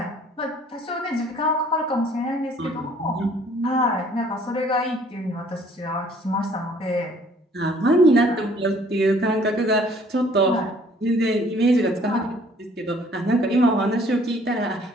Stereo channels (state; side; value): normal; both; correlation 0.58